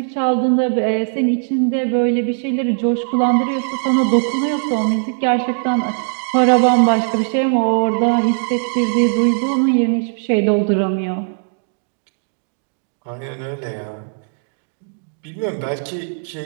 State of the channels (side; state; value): left; silent; digital silence